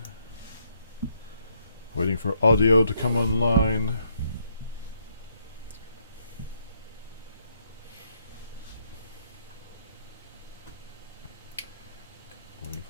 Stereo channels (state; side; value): inverted; both; correlation -0.73